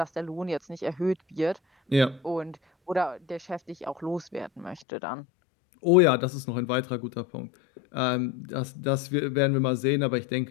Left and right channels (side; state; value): right; drops out; at 4.8 s